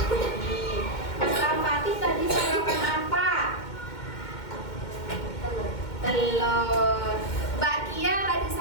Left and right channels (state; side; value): late; right; 2.1 ms